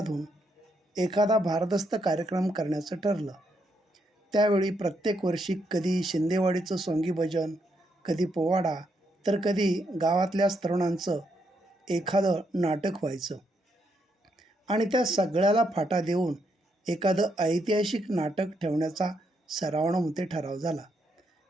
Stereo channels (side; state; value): both; normal; correlation 0.77